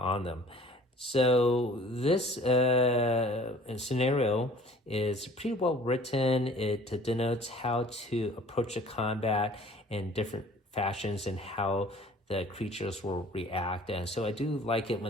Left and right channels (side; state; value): both; normal; correlation 0.50